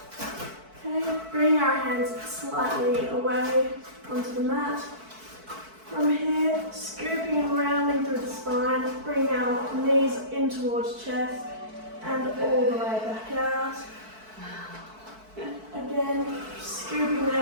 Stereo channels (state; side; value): late; left; 4.6 ms